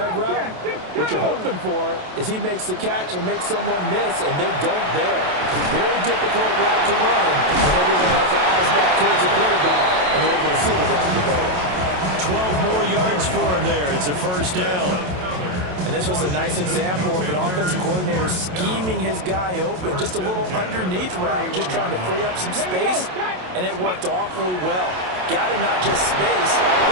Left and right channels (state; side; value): late; left; 27 ms